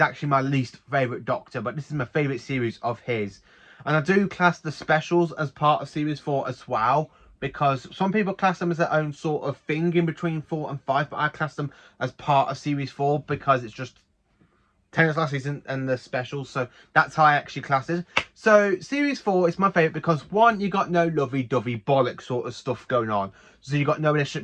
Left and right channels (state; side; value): identical; both; correlation 1.00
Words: actually my least favourite Doctor. But this is my favourite series of his. And I do class the specials as part of Series 4 as well. Because some people class them as their own sort of thing in between 4 and 5. But I class them as part of Series 4 because it's just Tennant's last season and the specials, so that's how I actually class it. So Series 4 is my favourite because one, you got no lovey-dovey bollock sort of stuff going on. So you got no